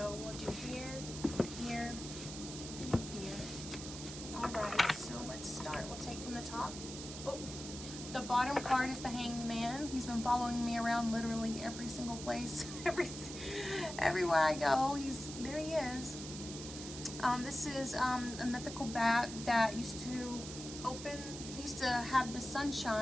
We'll do here, here, and here. Alright, so let's start. We'll take from the top. Oh, the bottom card is the Hanged Man. He's been following me around literally every single place. Everywhere I go, there he is. This is a mythical bat that used to have the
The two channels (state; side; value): noise; right; hiss, 10 dB below the sound